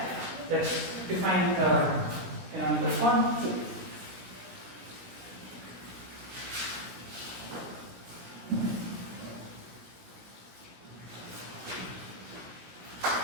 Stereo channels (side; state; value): left; late; 17 ms